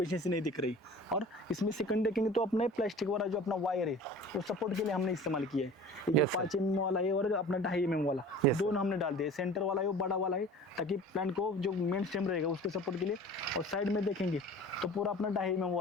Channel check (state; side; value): normal; both; correlation 0.42